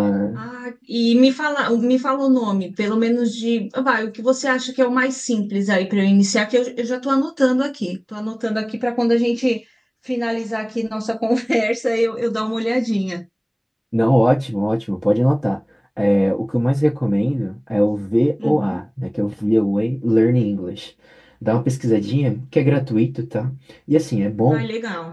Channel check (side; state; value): both; identical; correlation 1.00